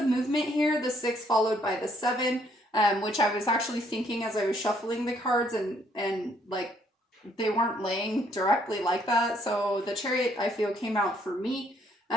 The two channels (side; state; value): both; normal; correlation 0.67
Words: movement here, the 6 followed by the 7, which I was actually thinking as I was shuffling the cards, and like they weren't laying directly like that. So the Chariot, I feel, came out for me.